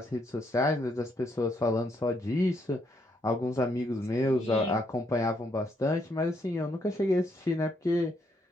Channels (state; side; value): normal; both; correlation 0.74